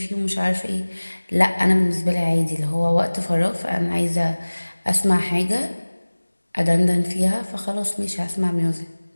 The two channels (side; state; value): both; inverted; correlation -1.00